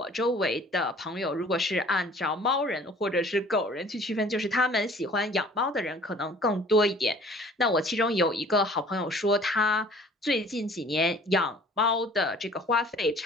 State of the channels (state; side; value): normal; both; correlation 0.51